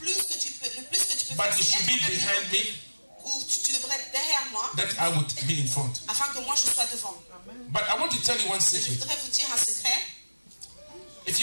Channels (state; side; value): inverted; both; correlation -1.00